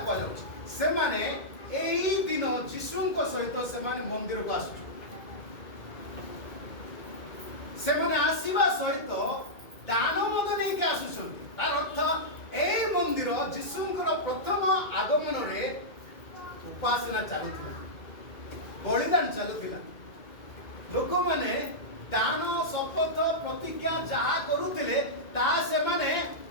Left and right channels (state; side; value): late; right; 2.1 ms